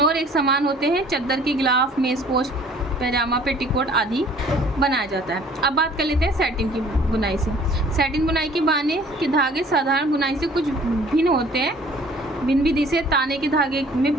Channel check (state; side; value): normal; both; correlation 0.53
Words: और एक समान होते हैं। चद्दर की गिलाफ, मेज़पोश, पैजामा, पेटीकोट आदि बनाया जाता है। अब बात कर लेते हैं सैटिन की बुनाई से। सैटिन बुनाई के बाने के धागे साधारण बुनाई से कुछ भिन्न होते हैं। भिन्न विधि से ताने के धागे में